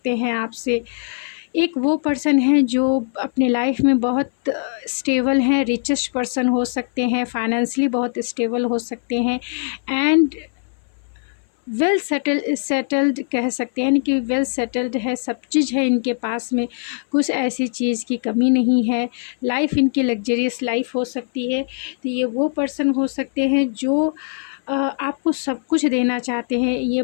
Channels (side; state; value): right; silent; 59 dB below the other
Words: हैं आपसे। एक वो पर्सन है जो अपने लाइफ में बहुत स्टेबल हैं, रिचेस्ट पर्सन हो सकते हैं, फाइनेंशियली बहुत स्टेबल हो सकते हैं, एंड वेल सेटल्ड कह सकते हैं। यानी कि वेल सेटल्ड है, सब चीज़ है इनके पास में, कुछ ऐसी चीज़ की कमी नहीं है। लाइफ इनकी लग्जरियस लाइफ हो सकती है। तो ये वो पर्सन हो सकते हैं जो आपको सब कुछ देना चाहते हैं। ये